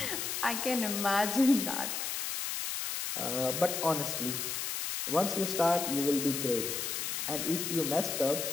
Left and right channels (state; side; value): noise; left; hiss, 2 dB below the sound